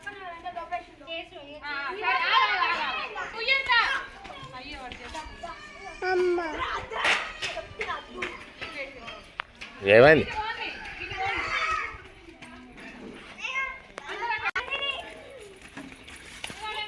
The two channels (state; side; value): identical; both; correlation 1.00